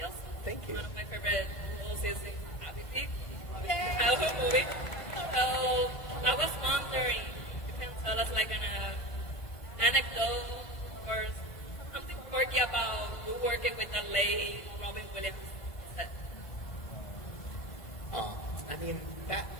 Thank you. One of my favorite roles is in Adquiere. Yeah, movie. So I was wondering, you can tell us like an anecdote or something quirky about you working with the late Robin Williams. I mean,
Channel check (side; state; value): right; late; 1.5 ms